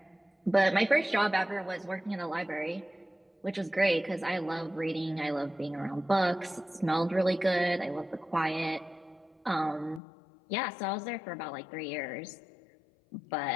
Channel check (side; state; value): right; drops out; at 10.0 s